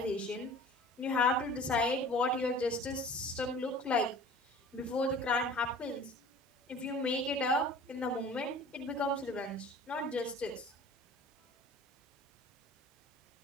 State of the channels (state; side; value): normal; both; correlation 0.45